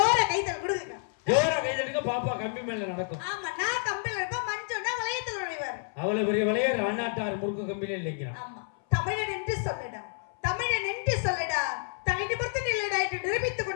கைதல் கொடுங்க, ஜோர கைதலுக்கு பாப்பா கம்பி மேல நடக்கும். ஆமா, நான் கம்பில இருப்பேன், மஞ்சோன்னா வளையத்தில் நுழைவார். அவ்வளவு பெரிய வளையர் அண்ணாட்டார் முறுக்கு கம்பில இல்லைங்க. ஆமா, தமிழன் என்று சொல்லடா, தமிழன் என்று சொல்லடா, தனி நிமிர்ந்து நில்லடா என்று நிரூபித்துக்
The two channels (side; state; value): right; silent; 58 dB below the other